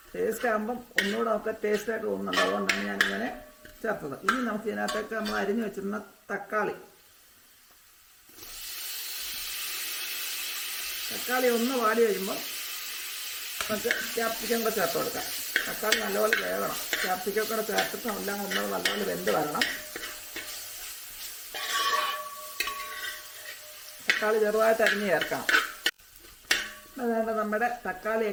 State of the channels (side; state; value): both; identical; correlation 1.00